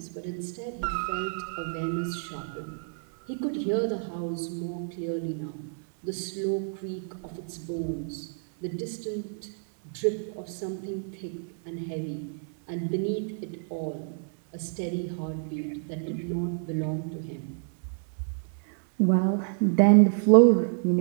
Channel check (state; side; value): silent; left; 59 dB below the other